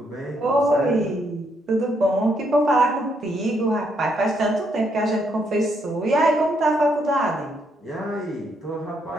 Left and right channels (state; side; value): normal; both; correlation 0.74